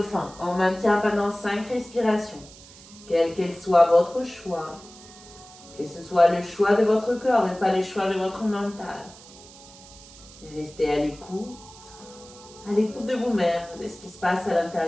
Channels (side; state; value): right; noise; hiss, 20 dB below the sound